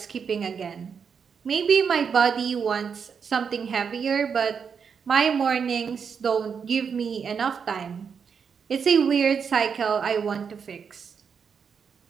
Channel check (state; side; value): quieter; left; 6.5 dB